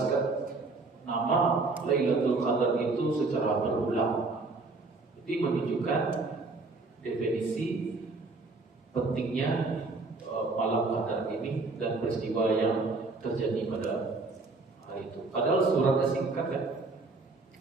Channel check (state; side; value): quieter; left; 3.6 dB